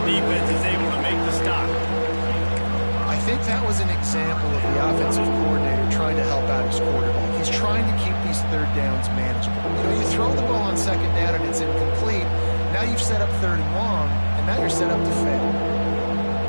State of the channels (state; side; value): inverted; both; correlation -1.00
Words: defense is able to make the stop. I think that was an example of the offensive coordinator trying to help out his quarterback. He's trying to keep these third downs manageable. You know, you throw the ball on second down and it's incomplete. Now you've set up third and long, and now you're set up to fail.